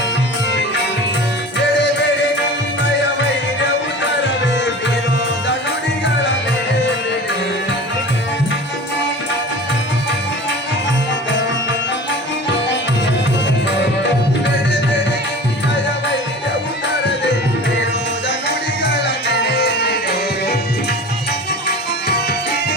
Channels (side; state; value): both; normal; correlation 0.37